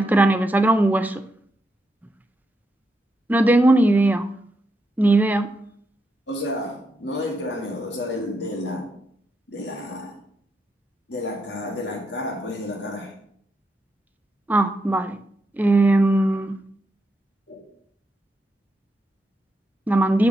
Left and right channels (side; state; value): both; normal; correlation 0.83